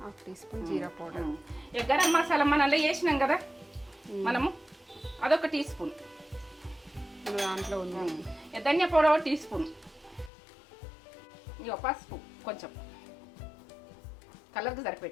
స్పూన్ జీరా పౌడర్. ఇక గరం మసాలా మనం అలా వేసినాం కదా మనము, అదొక టీ స్పూన్. దాంట్లో ధనియా పౌడర్ 1 టీ స్పూన్. ఇక పసుపు కొంచెం కలర్కి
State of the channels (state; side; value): drops out; right; at 10.3 s